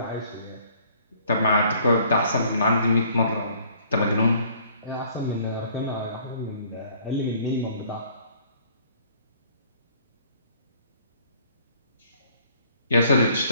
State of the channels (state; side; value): inverted; both; correlation -0.59